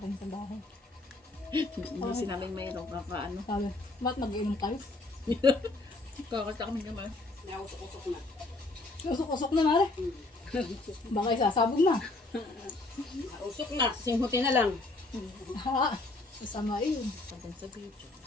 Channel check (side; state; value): right; quieter; 3.1 dB